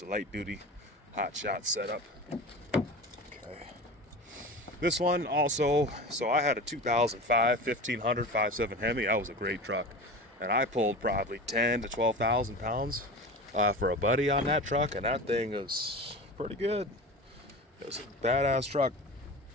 a light duty hotshot setup. Okay. This one also, so I had a 2005 1500 5.7 Hemi. That was a great truck, and I pulled probably 10 to 12,000 pounds for a buddy on that truck, and that thing is pretty good. It was a badass truck.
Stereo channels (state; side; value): normal; both; correlation 0.32